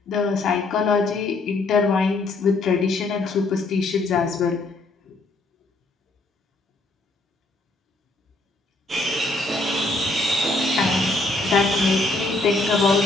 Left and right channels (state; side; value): quieter; right; 3.1 dB